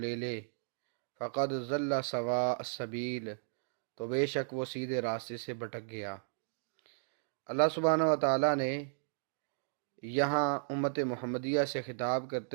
لے، فَقَدْ ضَلَّ سَوَاءَ السَّبِيلِ، تو بے شک وہ سیدھے راستے سے بھٹک گیا۔ اللہ سبحانہ و تعالیٰ نے یہاں امت محمدیہ سے خطاب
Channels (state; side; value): silent; left; digital silence